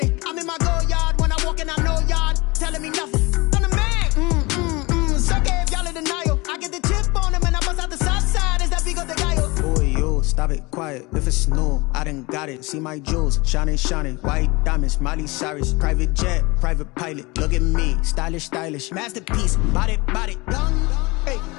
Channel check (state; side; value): quieter; right; 24.4 dB